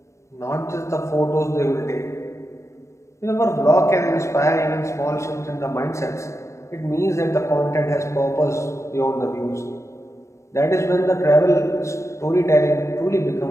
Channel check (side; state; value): right; late; 0.14 ms